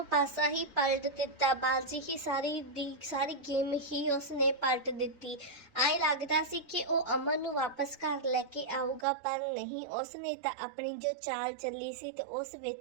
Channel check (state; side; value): drops out; left; at 9.1 s